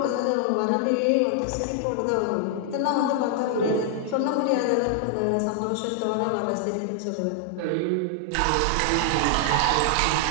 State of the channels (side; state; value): both; different; correlation 0.00